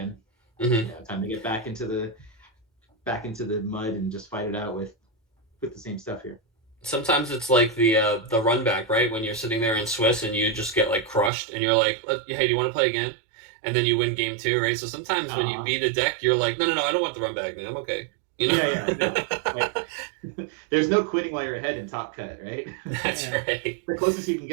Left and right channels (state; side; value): drops out; left; at 11.3 s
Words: Time to get back into the mud and just fight it out with the same stuff here. Sometimes it's like the run back, right? When you're sitting there in Swiss and you just get like crushed, and you're like, hey, do you want to play again? And then you win game 2, right? So sometimes when you beat a deck, you're like, no, I don't want the run back, man. I'm okay. There's no quitting while you're ahead in Top Cut, right? That's right. The closest you can